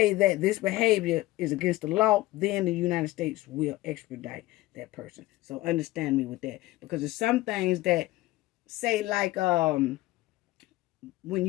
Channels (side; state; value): right; quieter; 18.0 dB